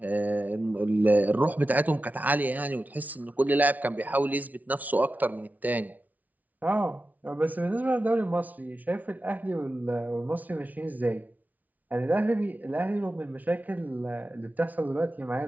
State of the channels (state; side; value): late; left; 0.075 ms